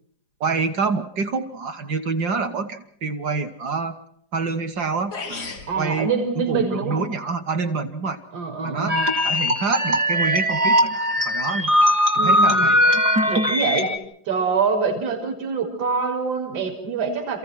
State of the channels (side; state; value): left; late; 4.9 ms